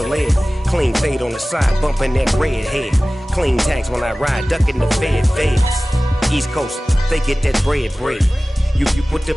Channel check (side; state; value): both; normal; correlation 0.97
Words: ed. Clean fade on the side, bumping that red head. Clean tags when I ride, ducking the feds. East Coast, they get that bread. You put the,